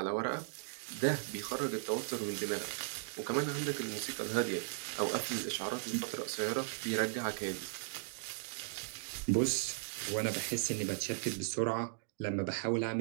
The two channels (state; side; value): silent; left; digital silence